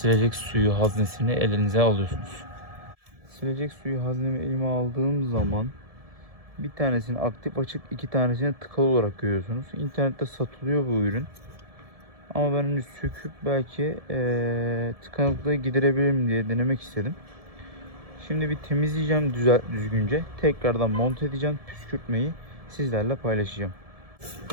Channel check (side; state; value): left; late; 1.7 ms